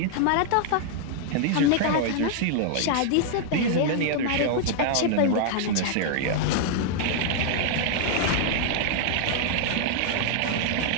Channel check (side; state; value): both; different; correlation 0.00